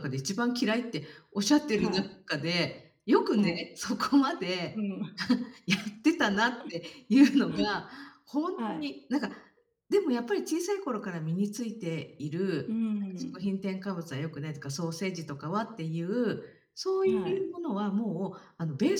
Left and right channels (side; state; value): both; identical; correlation 1.00